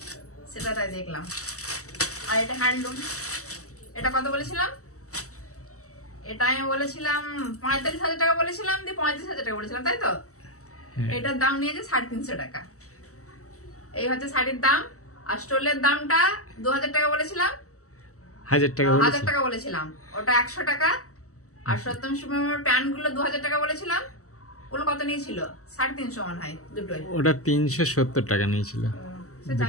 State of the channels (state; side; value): late; right; 0.65 ms